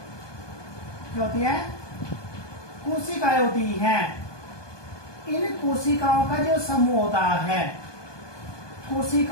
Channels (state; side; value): late; right; 1.2 ms